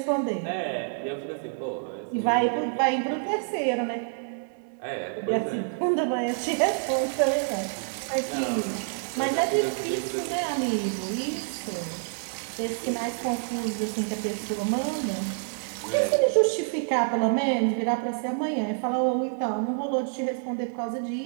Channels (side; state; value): left; silent; digital silence